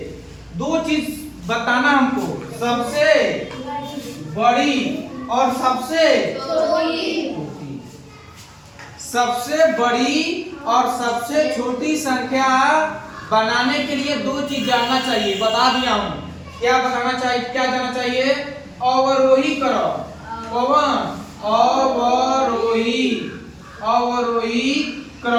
दो चीज बताना हमको, सबसे बड़ी और सबसे छोटी। सबसे बड़ी और सबसे छोटी संख्या बनाने के लिए दो चीज जानना चाहिए, बता दिया हूं। क्या बताना चाहिए, क्या जानना चाहिए? अवरोही क्रम। कौन? अवरोही, अवरोही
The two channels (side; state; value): both; identical; correlation 1.00